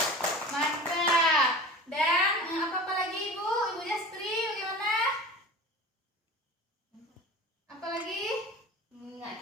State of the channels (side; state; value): both; normal; correlation 0.36